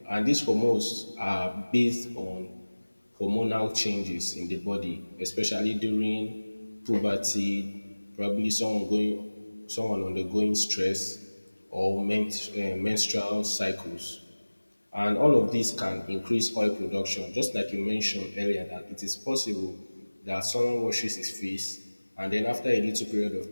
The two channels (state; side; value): inverted; both; correlation -1.00